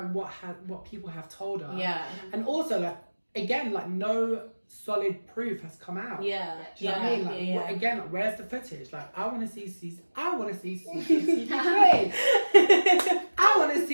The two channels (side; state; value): both; inverted; correlation -1.00